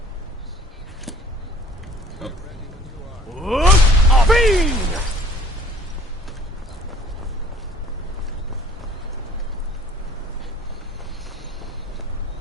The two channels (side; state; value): both; normal; correlation 0.53